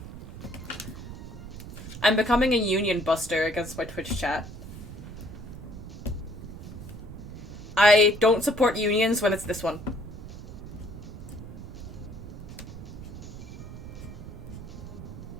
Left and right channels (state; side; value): noise; right; rumble, 11 dB below the sound